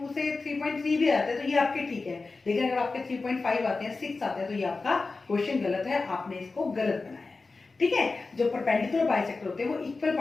से 3.3 भी आते हैं तो ये आपके ठीक है, लेकिन अगर आपके 3.5 आते हैं, 6 आते हैं, तो ये आपका क्वेश्चन गलत है, आपने इसको गलत बनाया है। ठीक है, जो परपेंडिकुलर बाइसेक्टर होते हैं वो इक्वल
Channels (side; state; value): right; quieter; 3.9 dB